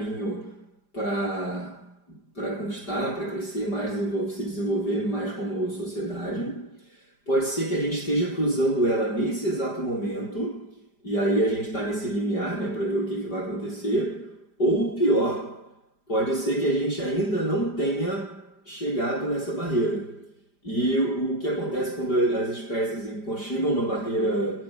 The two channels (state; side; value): late; right; 5.0 ms